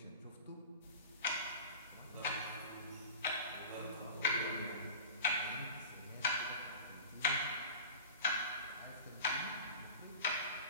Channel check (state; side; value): inverted; both; correlation -0.36